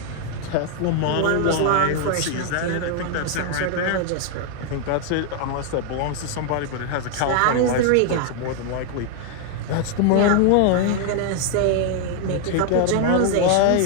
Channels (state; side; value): different; both; correlation 0.00